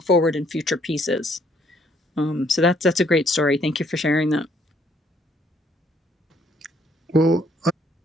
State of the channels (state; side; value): normal; both; correlation 0.66